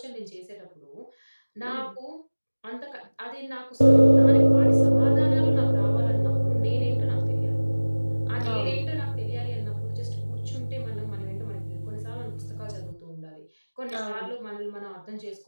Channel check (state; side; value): inverted; both; correlation -1.00